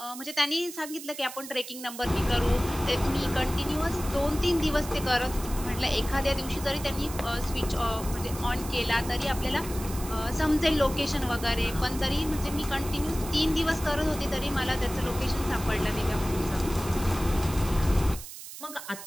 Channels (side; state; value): right; noise; hiss, 12 dB below the sound